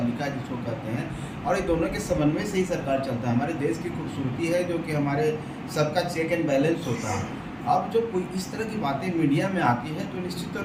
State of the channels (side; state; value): both; identical; correlation 1.00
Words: जिसको कहते हैं, और ये दोनों के समन्वय से ही सरकार चलता है। हमारे देश की खूबसूरती है जो कि हमारे सबका चेक एंड बैलेंस होता है। अब जो कोई इस तरह की बातें मीडिया में आती है तो निश्चित तौर